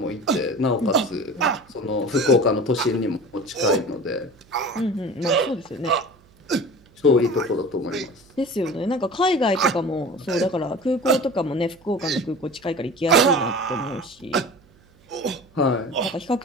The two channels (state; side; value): noise; right; hum, 29 dB below the sound